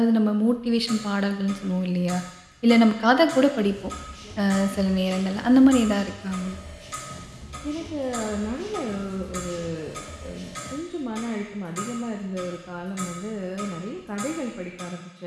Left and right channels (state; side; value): identical; both; correlation 1.00